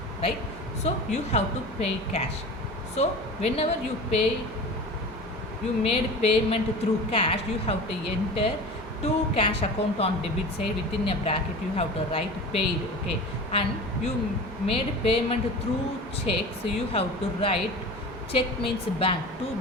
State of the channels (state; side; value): normal; both; correlation 0.35